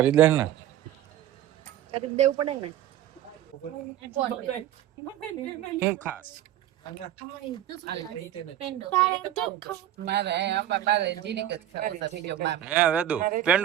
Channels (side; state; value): left; quieter; 12.1 dB